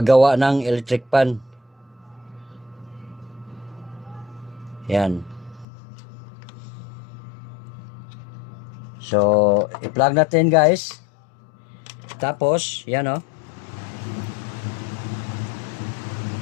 ng electric fan. Yan. So, i-plug natin guys. Tapos, yan o.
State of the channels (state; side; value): drops out; right; at 5.7 s